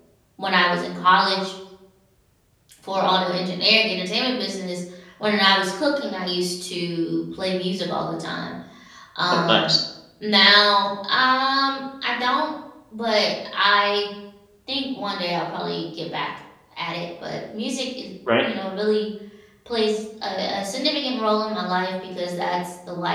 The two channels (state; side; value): identical; both; correlation 1.00